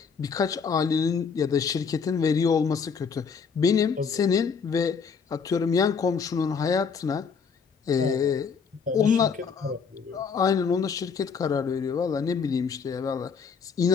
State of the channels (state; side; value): quieter; right; 5.9 dB